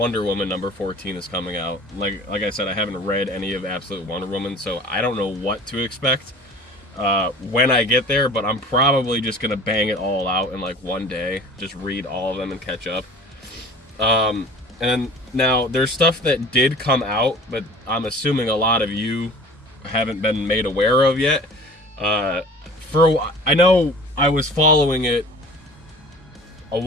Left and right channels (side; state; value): both; normal; correlation 0.43